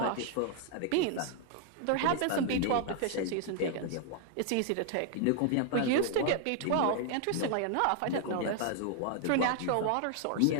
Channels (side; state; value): both; different; correlation 0.00